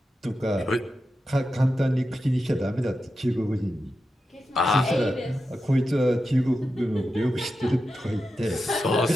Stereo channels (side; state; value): both; normal; correlation 0.90